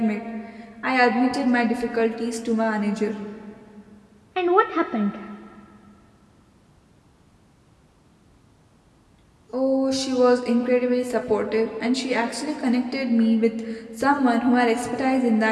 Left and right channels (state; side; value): identical; both; correlation 1.00